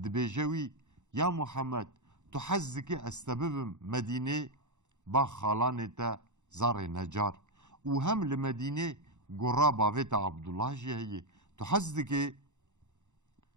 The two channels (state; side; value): late; left; 0.84 ms